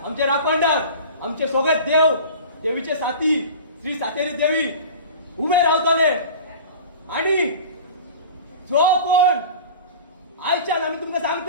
आमचे राखणदार, आमचे सगळे देव, देवीचे साथी श्री सातेरी देवी उभे रावतले आणि जो कोण आयच्यान आमी तुमकां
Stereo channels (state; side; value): inverted; both; correlation -0.38